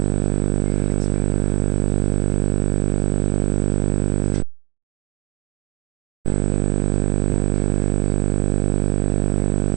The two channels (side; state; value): left; quieter; 22.8 dB